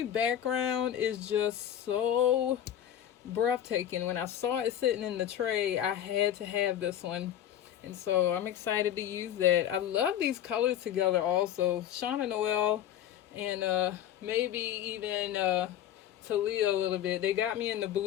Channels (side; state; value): right; quieter; 10.7 dB